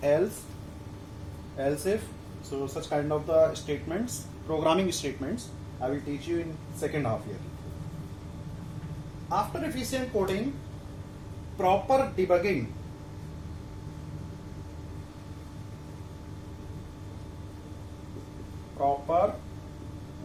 else if. So such kind of the statements, programming statements, I will teach you in second half year. After efficient coding, proper debugging. Proper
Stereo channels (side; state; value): both; identical; correlation 1.00